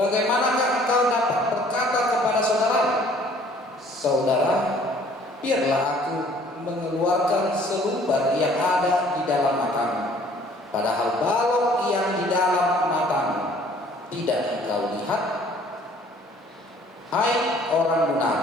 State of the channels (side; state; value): both; normal; correlation 0.56